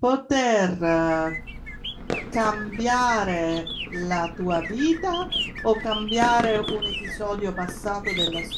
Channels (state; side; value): identical; both; correlation 1.00